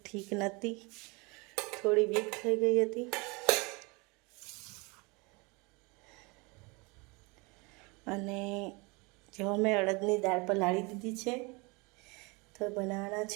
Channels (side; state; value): left; quieter; 27.8 dB